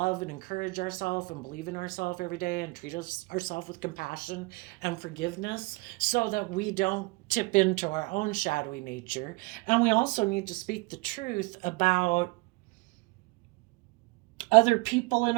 and encourage ourselves and believe in ourselves every day, and treat ourselves with compassion and forgiveness, so that we don't tip into our own shadowy nature. And we also need to speak the truth about other people in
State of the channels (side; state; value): left; quieter; 25.8 dB